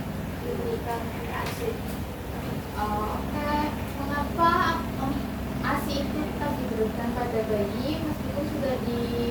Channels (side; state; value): both; identical; correlation 1.00